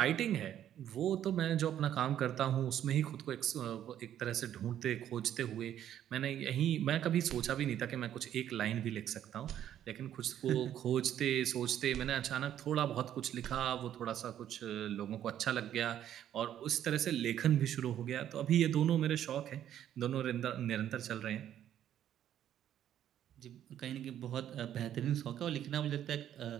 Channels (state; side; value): quieter; left; 10.8 dB